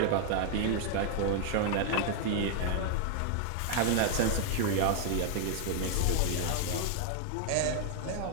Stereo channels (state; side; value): different; both; correlation 0.00